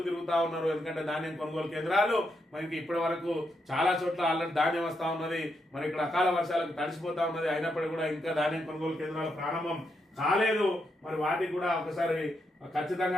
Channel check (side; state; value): both; normal; correlation 0.81